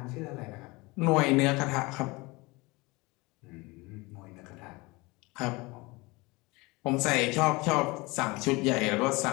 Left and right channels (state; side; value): quieter; right; 24.0 dB